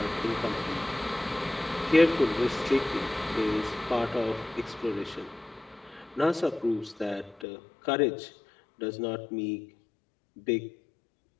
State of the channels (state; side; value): drops out; right; at 7.5 s